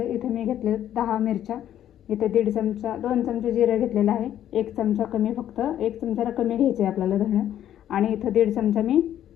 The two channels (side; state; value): right; quieter; 11.2 dB